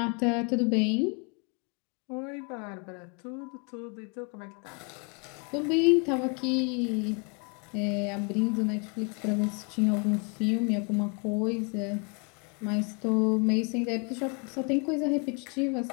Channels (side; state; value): right; quieter; 34.9 dB